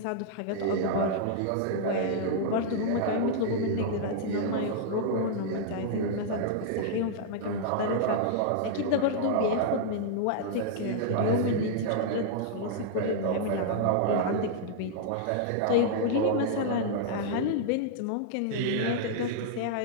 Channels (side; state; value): both; different; correlation -0.01